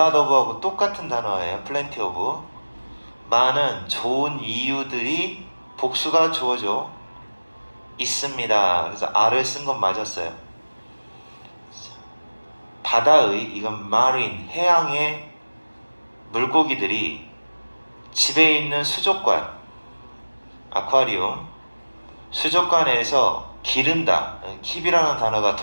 of하고 똑같은 단어예요. plenty of. 많은 좋은 이유들이 복수가 주어져 있습니다. 그래서 R을 쓴 건 맞았어요. 바다의, 이건 marine, 해양의 물고기들이 집에 있는 수족관, 아쿠아리움, 수족관에서 기른다. 킵이라는 단어가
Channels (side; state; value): both; inverted; correlation -1.00